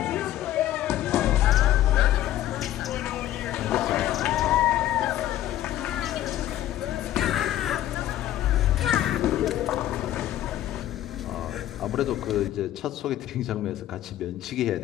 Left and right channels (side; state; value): right; quieter; 12.9 dB